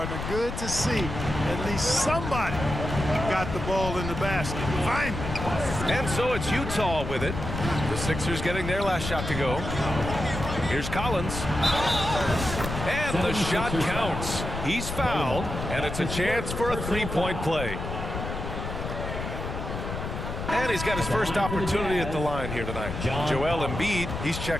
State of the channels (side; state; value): left; noise; rumble, 5 dB below the sound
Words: Good to see at least somebody got the ball in the basket. Finally. And so it's Utah with it. The Sixers getting their last shot to go. Here's Collins. And the shot counts. He's fouled, and it's a chance for a 3-point play. And he's got his first opportunity at the line here tonight. Joel Embiid, he's